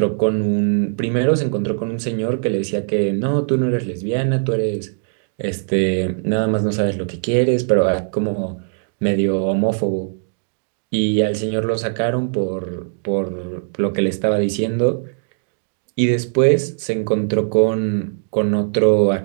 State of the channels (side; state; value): left; silent; digital silence